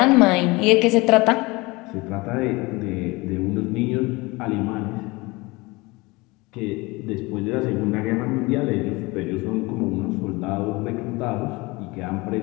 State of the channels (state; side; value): quieter; right; 23.7 dB